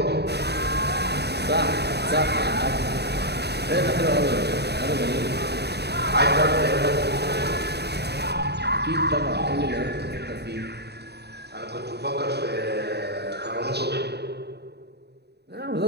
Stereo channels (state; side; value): late; left; 0.48 ms